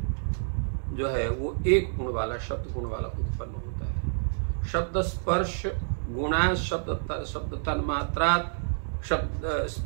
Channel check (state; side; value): silent; left; digital silence